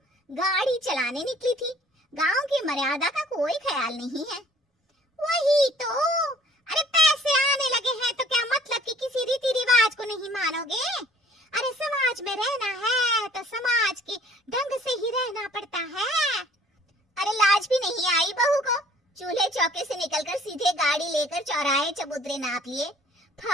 गाड़ी चलाने निकली थी, गांव की मर्यादा का कोई ख्याल नहीं है। वही तो, अरे पैसे आने लगे हैं तो क्या मतलब कि किसी रीति रिवाज को नहीं मानोगे? अरे समाज में रहना है तो समाज के ढंग से ही रहना पड़ता है। अरे लाज भी नहीं आई बहू को? चूल्हे चौके से निकलकर सीधे गाड़ी लेकर चौराहे चबूतरे नाप लिए,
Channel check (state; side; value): normal; both; correlation 0.55